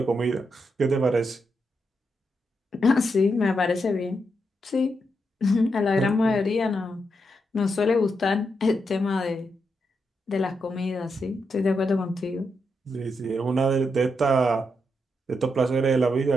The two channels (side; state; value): both; normal; correlation 0.83